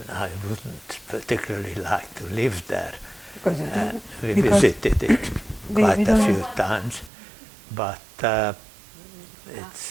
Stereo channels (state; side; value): drops out; left; at 7.1 s